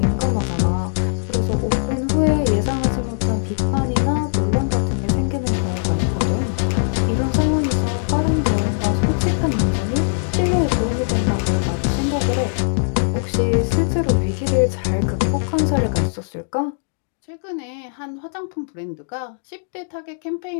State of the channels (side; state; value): right; silent; digital silence